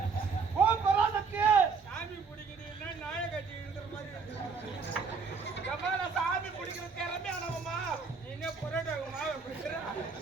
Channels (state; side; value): quieter; left; 5.1 dB